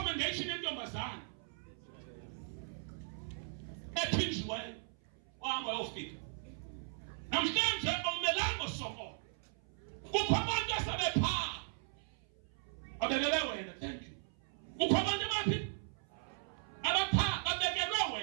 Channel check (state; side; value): silent; left; 53 dB below the other